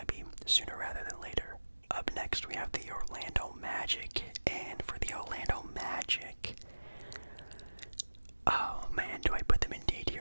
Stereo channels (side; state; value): both; inverted; correlation -1.00